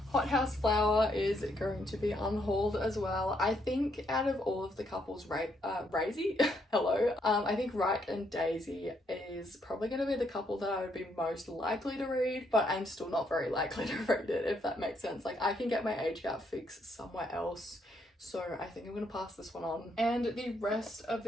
Hothouse Flower is going to be unhauled as well. I think out of all of the couples, Razy, hello, I think Wright and Daisy is probably going to be the couple that I would be most likely to read, but I'm still not very likely to read it, if that makes sense. Like, I can get my age gap fixed somewhere else, so I think I'm going to pass this one on. And the rest of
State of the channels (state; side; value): normal; both; correlation 0.74